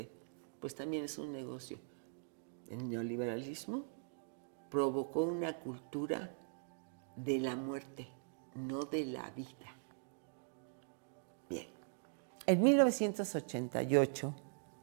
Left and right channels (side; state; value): left; silent; digital silence